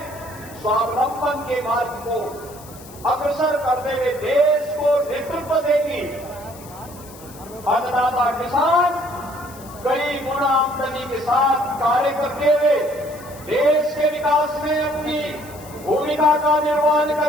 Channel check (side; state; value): left; noise; hiss, 20 dB below the sound